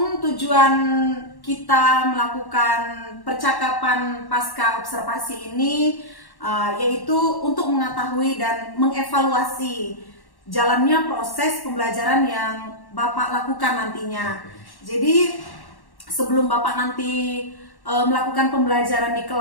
tujuan kita melakukan percakapan pasca observasi ini yaitu untuk mengetahui dan mengevaluasi jalannya proses pembelajaran yang Bapak lakukan nantinya. Jadi sebelum Bapak nanti melakukan pembelajaran di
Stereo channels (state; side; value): late; right; 1.1 ms